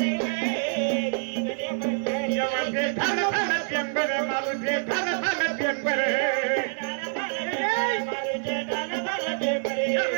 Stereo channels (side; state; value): left; silent; 61 dB below the other